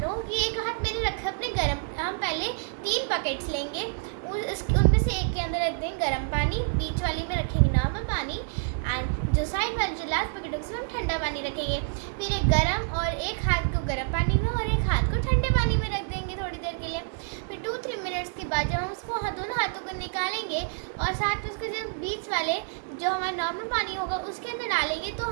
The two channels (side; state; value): left; silent; digital silence